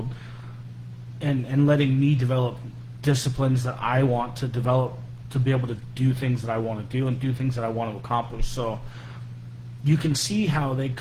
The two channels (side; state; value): both; identical; correlation 1.00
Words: and letting me develop disciplines that I want to develop to be able to do things that I want to do and do things that I want to accomplish. So you can see how they